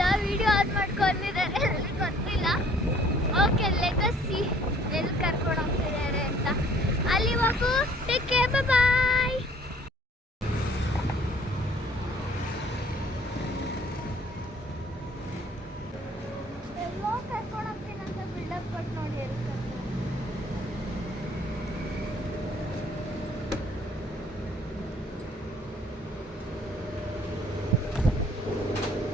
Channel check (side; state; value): both; normal; correlation 0.57